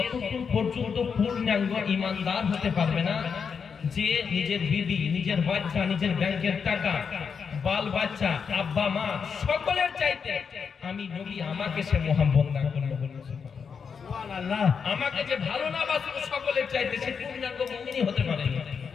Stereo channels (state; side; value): quieter; right; 6.2 dB